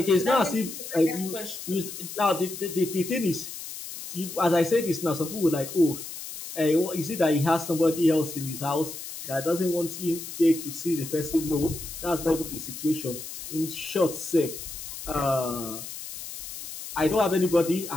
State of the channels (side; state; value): left; noise; hiss, 10 dB below the sound